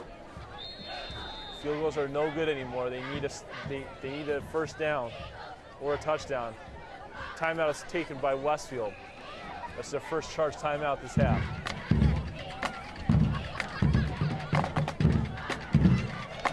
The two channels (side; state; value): both; identical; correlation 1.00